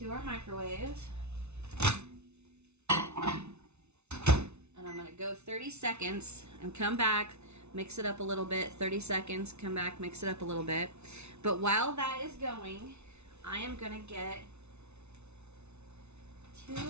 our microwave. And I'm going to go 30 seconds and come back, mix it up a little bit. 30 seconds, come back, mix it up a little bit. But while that is going, I am going to get 2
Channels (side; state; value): left; late; 0.81 ms